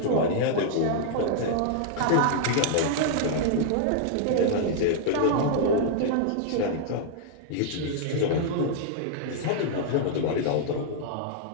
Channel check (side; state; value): both; different; correlation -0.01